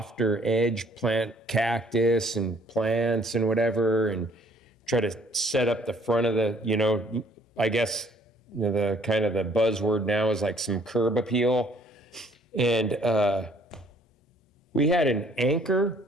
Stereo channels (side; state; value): both; normal; correlation 0.60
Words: edge, plant cactus and plants and whatever, and try to set up the front of the, you know, I guess, you know, the kind of the buzzword now is like some curb appeal. And we had an anchor